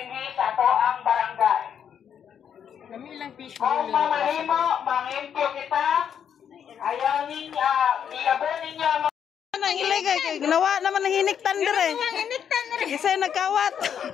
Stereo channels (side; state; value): right; quieter; 8.3 dB